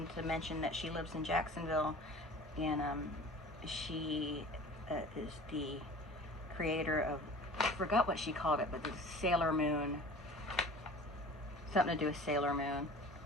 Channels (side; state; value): both; normal; correlation 0.42